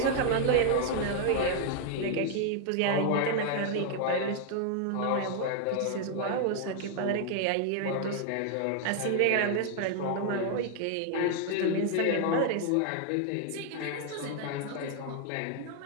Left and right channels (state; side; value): different; both; correlation 0.00